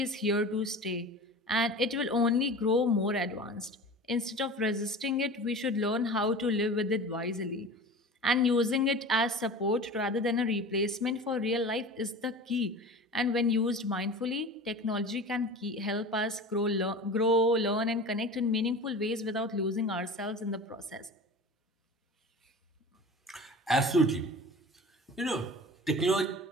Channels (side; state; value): both; normal; correlation 0.36